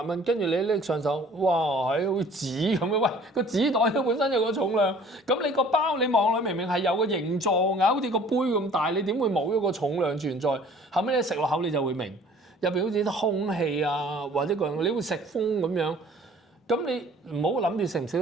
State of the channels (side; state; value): both; normal; correlation 0.51